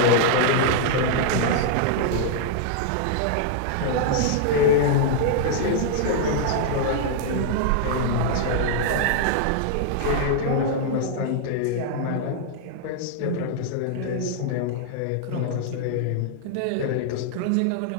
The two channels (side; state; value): both; different; correlation -0.01